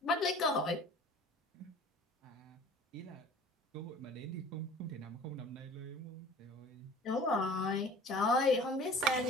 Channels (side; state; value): both; normal; correlation 0.45